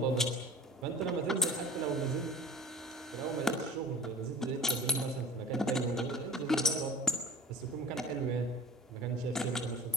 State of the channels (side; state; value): both; normal; correlation 0.42